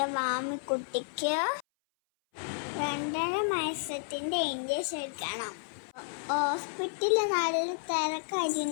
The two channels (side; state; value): right; silent; 57 dB below the other